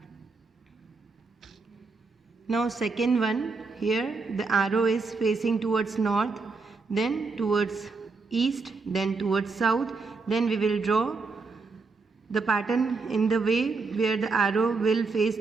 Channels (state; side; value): quieter; left; 4.2 dB